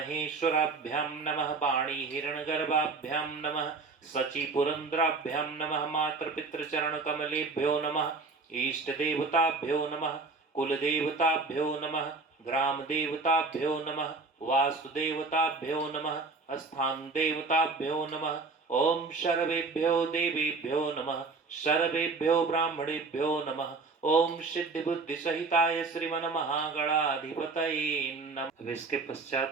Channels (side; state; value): left; quieter; 4.0 dB